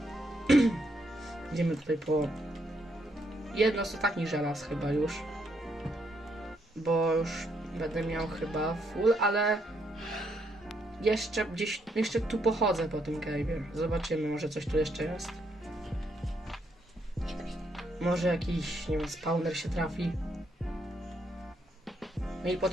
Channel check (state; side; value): normal; both; correlation 0.75